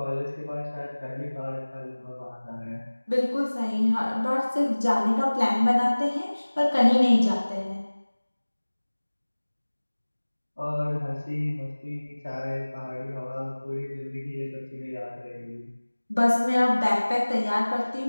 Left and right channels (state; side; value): inverted; both; correlation -1.00